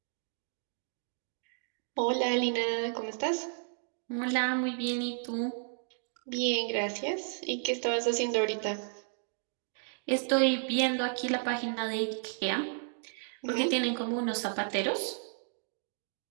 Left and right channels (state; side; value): silent; left; digital silence